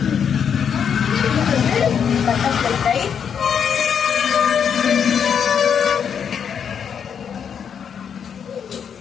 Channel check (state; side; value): quieter; right; 7.5 dB